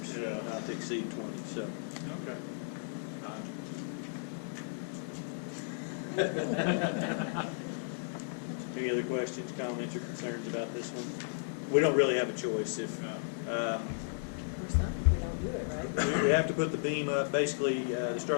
Yeah. not to exceed 20, so. Okay. Any other questions, comments, or concerns about this one? We don't really have a choice. If Or something, we don't do it right. we have to put the beam up, basically, the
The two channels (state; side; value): silent; right; digital silence